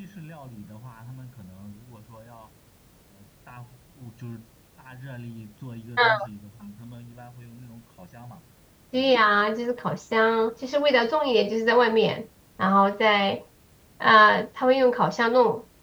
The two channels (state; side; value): identical; both; correlation 1.00